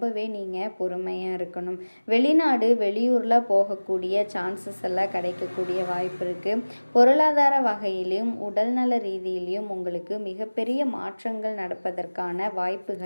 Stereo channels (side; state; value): both; inverted; correlation -1.00